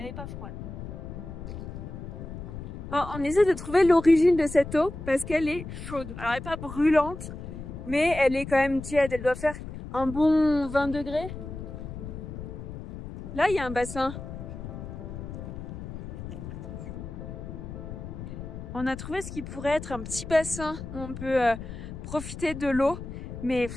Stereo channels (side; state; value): left; noise; rumble, 9 dB below the sound